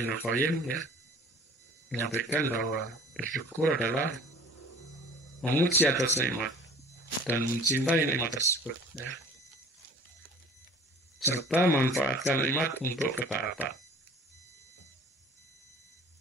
Qayyim, ya, menyampaikan bahwa bersyukur adalah memuji atas nikmat dan mencintai nikmat tersebut, ya, serta memanfaatkan nikmat untuk ketaatan.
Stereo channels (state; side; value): normal; both; correlation 0.47